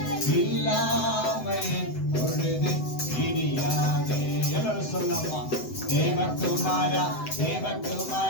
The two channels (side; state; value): right; late; 7.9 ms